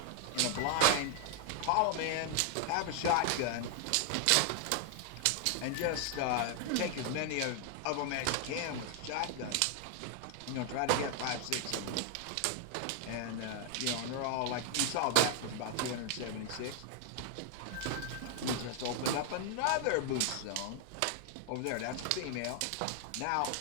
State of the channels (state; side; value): different; both; correlation 0.00